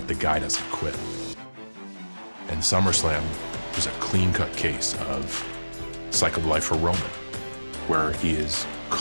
the guy doesn't quit. And SummerSlam was a clean-cut case of cycle of life for Roman, where he is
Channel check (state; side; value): inverted; both; correlation -1.00